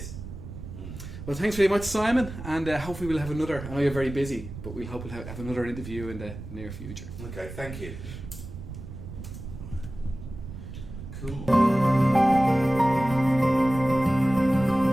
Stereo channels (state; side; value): noise; right; rumble, 11 dB below the sound